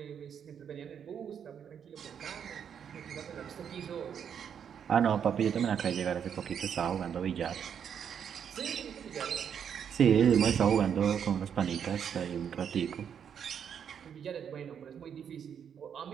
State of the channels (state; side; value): quieter; left; 8.0 dB